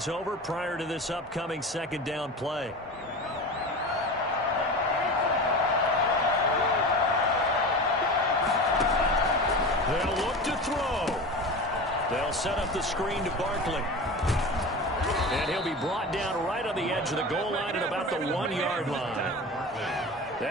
over prior to this upcoming second down play. They'll look to throw. They'll set up the screen to Barkley. And he'll be brought down right on the edge of the goal line at about the 1-yard line.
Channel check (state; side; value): normal; both; correlation 0.30